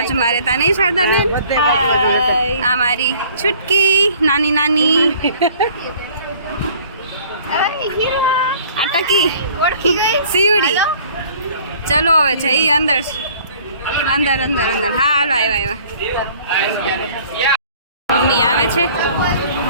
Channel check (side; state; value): both; inverted; correlation -0.53